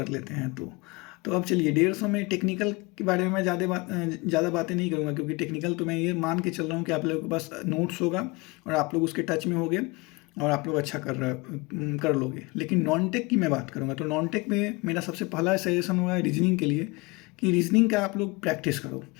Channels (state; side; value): quieter; right; 25.8 dB